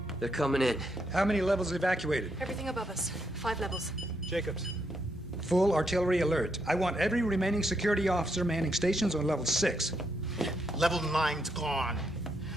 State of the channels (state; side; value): normal; both; correlation 0.78